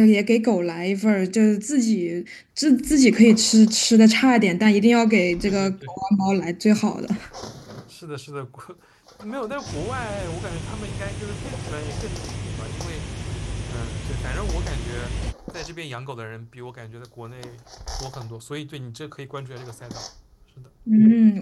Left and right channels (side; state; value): both; identical; correlation 1.00